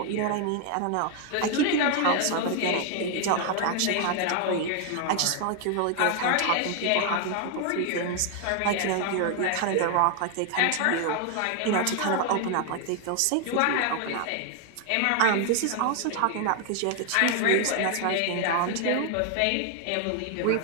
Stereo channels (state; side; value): different; both; correlation 0.00